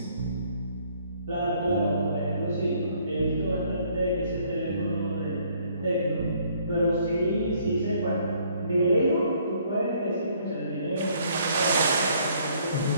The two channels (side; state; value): both; inverted; correlation -0.63